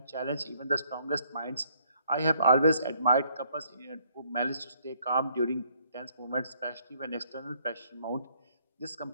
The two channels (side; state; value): both; inverted; correlation -0.67